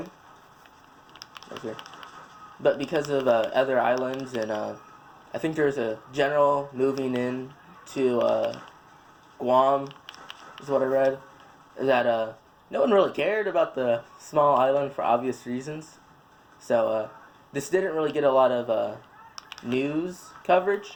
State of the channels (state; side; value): identical; both; correlation 1.00